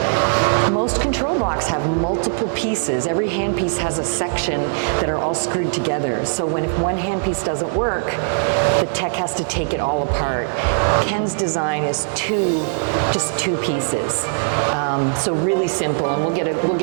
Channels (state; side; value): silent; left; digital silence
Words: Most control blocks have multiple pieces. Every handpiece has a section that are all screwed together. So if one handpiece doesn't work, the tech has to take it all apart. Ken's design is just two pieces. So really simple, and we'll